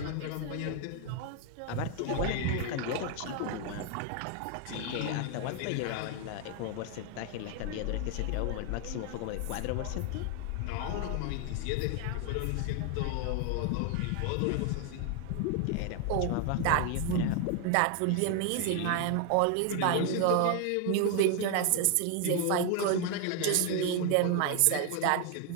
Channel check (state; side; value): different; both; correlation 0.01